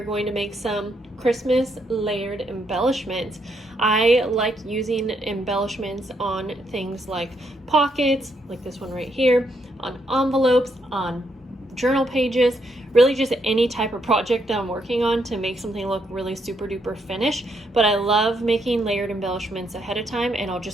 going to make some Christmas layered embellishments. I like using embellishments on things like pockets, like this one right here, on envelopes, on journal pages, really just any type of project that I'm working on to make something look really super duper finished. But I love making layered embellishments ahead of time, and I'll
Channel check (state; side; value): normal; both; correlation 0.76